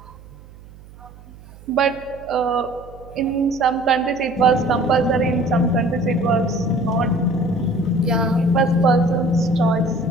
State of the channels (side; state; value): right; noise; hum, 21 dB below the sound